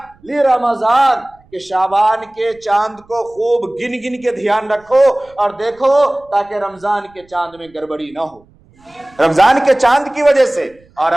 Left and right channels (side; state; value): right; noise; rumble, 30 dB below the sound